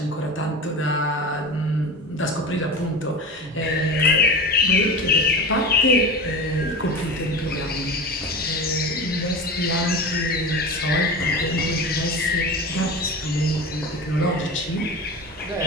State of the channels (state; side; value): normal; both; correlation 0.29